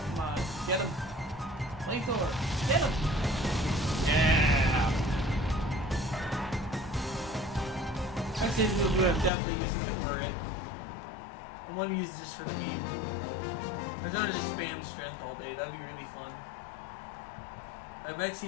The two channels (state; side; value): drops out; right; at 9.3 s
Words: Come on, get him! Flamethrower, get him! Yeah! I'd say we would have definitely used it for it. I want to use this for the meme. I just want to just spam strength all day, that'd be really fun. My next